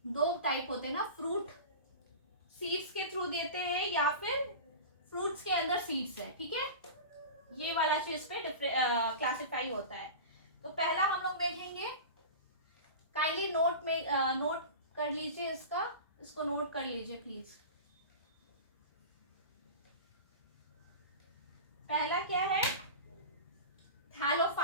दो टाइप होते हैं ना, फ्रूट सीड्स के थ्रू देते हैं या फिर फ्रूट्स के अंदर सीड्स है। ठीक है, ये वाला चीज पे क्लासिफाई होता है। तो पहला हम लोग देखेंगे, काइंडली नोट में नोट कर लीजिए, इसको नोट कर लीजिए प्लीज। पहला क्या है,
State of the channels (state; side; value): inverted; both; correlation -0.31